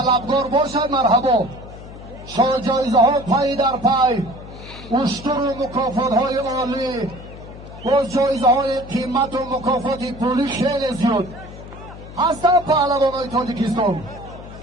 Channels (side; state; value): left; noise; hum, 15 dB below the sound